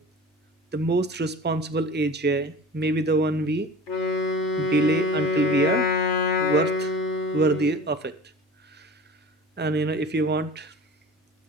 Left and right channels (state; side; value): normal; both; correlation 0.38